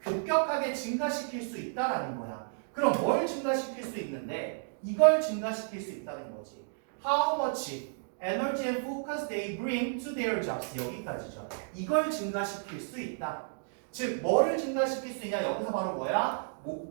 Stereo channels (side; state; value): left; silent; digital silence